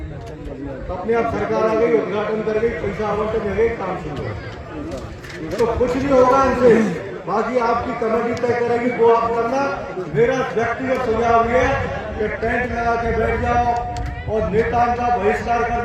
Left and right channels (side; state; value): both; identical; correlation 1.00